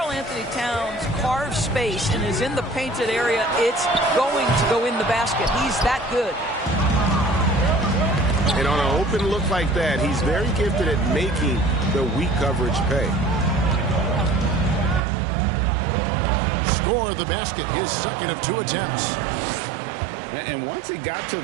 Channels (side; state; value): left; drops out; at 15.0 s